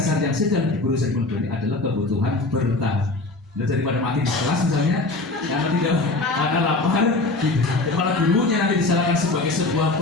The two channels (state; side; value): quieter; right; 3.2 dB